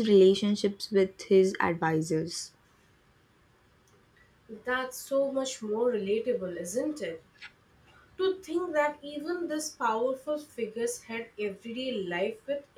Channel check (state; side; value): identical; both; correlation 1.00